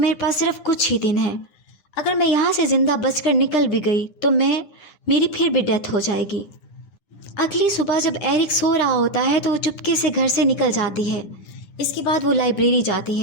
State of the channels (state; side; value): late; right; 9.9 ms